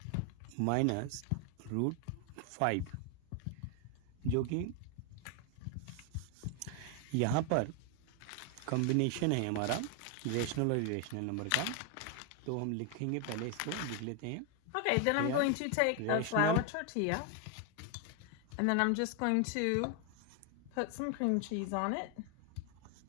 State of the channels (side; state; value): both; different; correlation 0.00